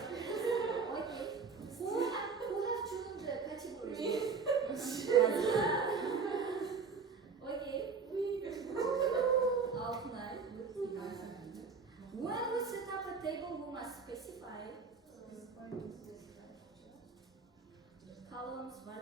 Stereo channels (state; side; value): quieter; left; 5.2 dB